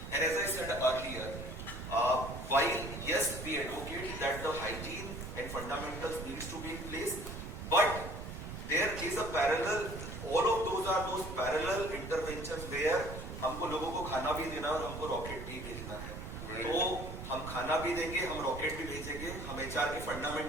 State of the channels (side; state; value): right; noise; rumble, 8 dB below the sound